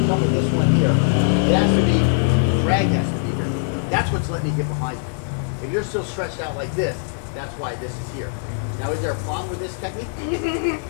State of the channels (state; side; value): silent; right; digital silence